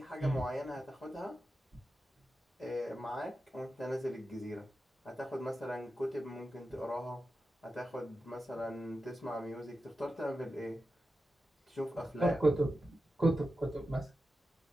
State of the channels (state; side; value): normal; both; correlation 0.91